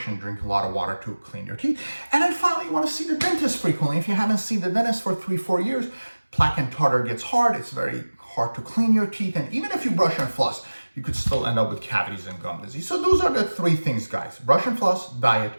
and drink a lot of water to clean your teeth. And then finally, you want to see the dentist frequently. If you haven't seen the dentist for 3-4 years, plaque and tartar gets hard. It's very hard to clean your teeth. And even if you brush and floss, you could still end up with cavities and gum disease. So those are the 3 things, guys. Brush and floss, diet,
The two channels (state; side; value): inverted; both; correlation -1.00